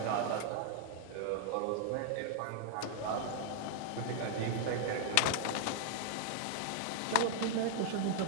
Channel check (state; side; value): different; both; correlation 0.00